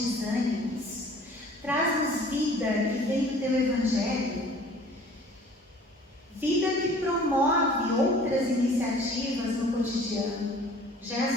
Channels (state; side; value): normal; both; correlation 0.50